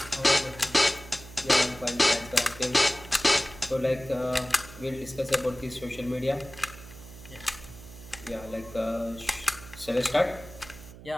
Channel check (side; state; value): right; noise; hum, 17 dB below the sound